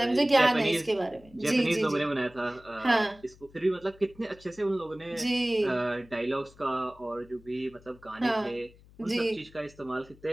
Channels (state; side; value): noise; left; hum, 25 dB below the sound